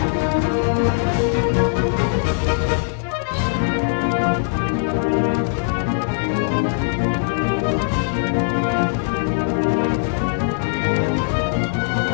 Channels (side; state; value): right; silent; digital silence